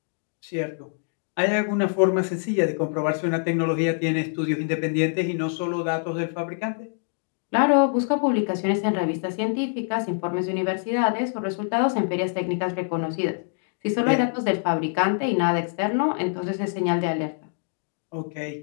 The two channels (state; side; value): silent; right; 62 dB below the other